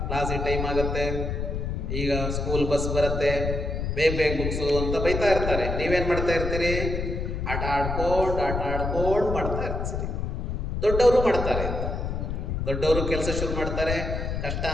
ಕ್ಲಾಸಿಗೆ ಟೈಮ್ ಆಗುತ್ತೆ, ಈಗ ಸ್ಕೂಲ್ ಬಸ್ ಬರುತ್ತೆ, ಬೇಗ ಬೇಗ ಮುಗಿಸು ಅಂತ ಬೈತಾ ಇರ್ತಾರೆ. ನೀವೇನು ಮಾಡ್ತಾ ಇರ್ತೀರಿ? ಆಟ ಆಡ್ಕೊಂಡು ಮಾಡ್ತಾ ಇರ್ತೀರಿ. ದೊಡ್ಡವರು ಮಾಡ್ತಾರೆ, ದೊಡ್ಡವರು ಕೆಲಸ ಶುರು ಮಾಡ್ತಾರೆ, ಕಷ್ಟ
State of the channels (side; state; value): left; noise; rumble, 2 dB below the sound